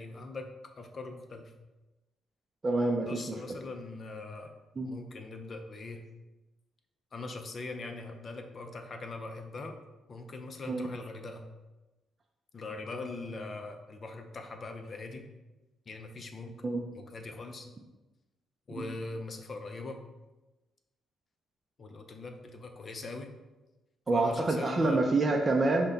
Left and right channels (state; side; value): normal; both; correlation 0.82